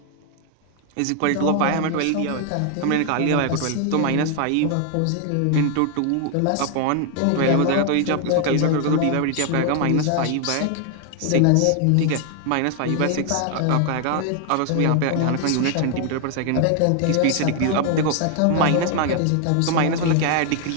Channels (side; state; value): both; different; correlation 0.00